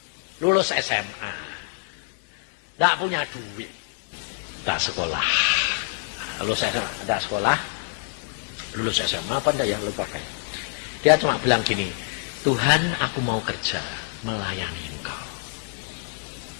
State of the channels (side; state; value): right; silent; digital silence